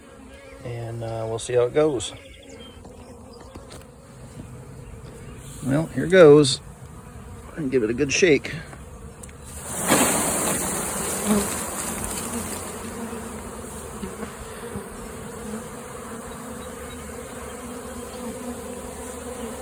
and we'll see how it goes. Well, here goes. And give it a good shake.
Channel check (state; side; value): identical; both; correlation 1.00